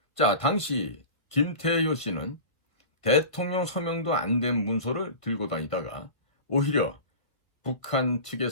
자, 당시 김태효 씨는 대통령 서명도 안 된 문서를 들고 다니다가 오히려 북한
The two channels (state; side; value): late; right; 1.5 ms